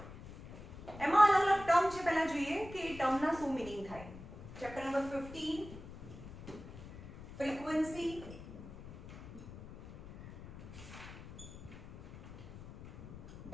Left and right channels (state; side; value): noise; left; rumble, 14 dB below the sound